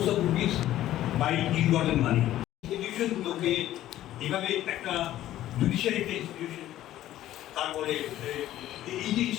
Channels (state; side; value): quieter; right; 13.5 dB